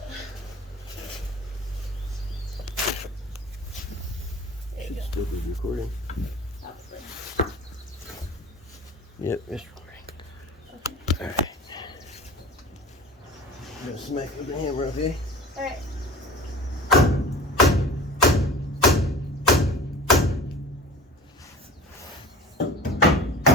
Should still be recording. Probably. Yep, it's recording. Okay. Alright. I'm gonna smack with the hammer, okay? All right.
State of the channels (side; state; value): both; normal; correlation 0.40